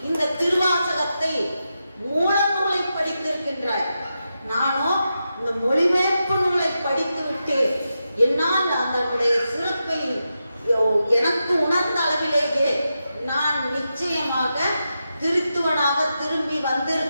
இந்த திருவாசகத்தை மூல நூலை படித்திருக்கின்றாய், நானோ இந்த மொழிபெயர்ப்பு நூலை படித்து விட்டேன். என்னால் அதனுடைய சிறப்பை எனக்கு உணர்ந்த அளவிலேயே நான் நிச்சயமாக திருத்துவனாக திரும்பி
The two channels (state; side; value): inverted; both; correlation -0.88